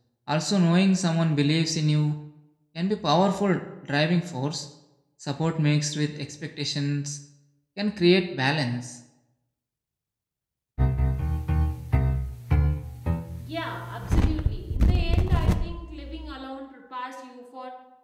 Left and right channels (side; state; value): both; identical; correlation 1.00